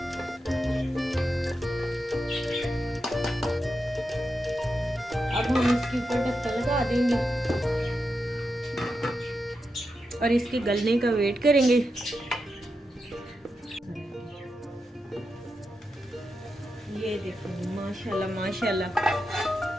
अब हम इसके ऊपर ढक्कन लगा देंगे और इसके गलने का वेट करेंगे। ये देखो माशाल्लाह माशाल्लाह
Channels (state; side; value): normal; both; correlation 0.87